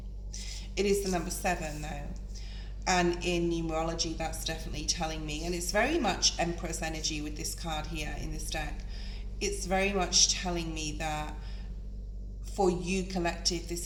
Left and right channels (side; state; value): both; identical; correlation 1.00